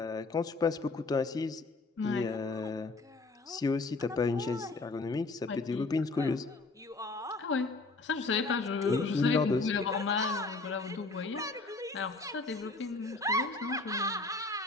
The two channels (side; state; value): right; quieter; 3.5 dB